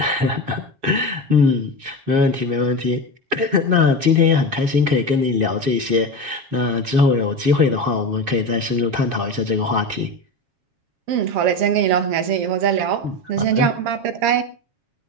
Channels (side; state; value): left; late; 7.3 ms